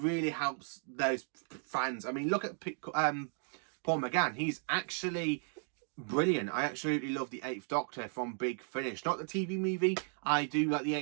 helps those fans. I mean, look at Paul McGann. He's actually brilliant. I absolutely love the Eighth Doctor from Big Finish. Not the TV movie. I do like the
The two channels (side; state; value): left; silent; 54 dB below the other